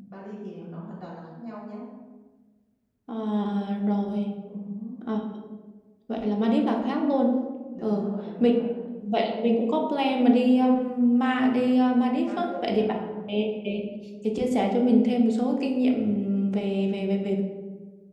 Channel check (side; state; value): both; identical; correlation 1.00